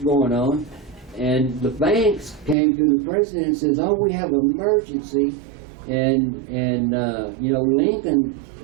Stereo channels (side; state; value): left; drops out; at 2.6 s